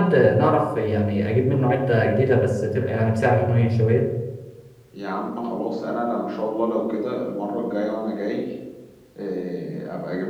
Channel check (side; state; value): both; identical; correlation 1.00